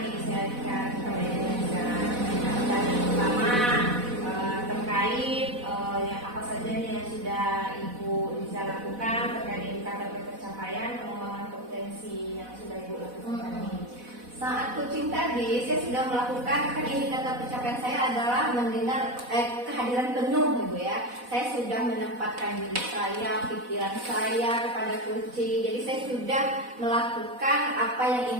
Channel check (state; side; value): late; left; 4.1 ms